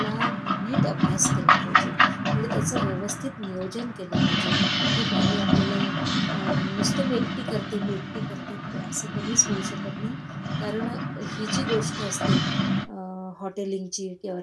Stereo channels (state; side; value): identical; both; correlation 1.00